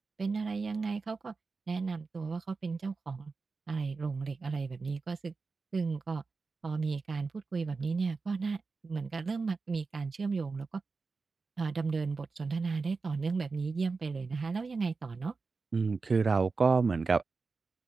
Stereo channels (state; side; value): quieter; left; 4.3 dB